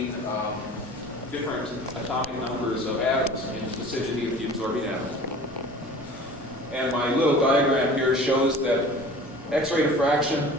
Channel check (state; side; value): normal; both; correlation 0.43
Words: different atomic numbers of atoms in the vicinity of the absorbing atom. And my little diagram here shows that X-ray diffraction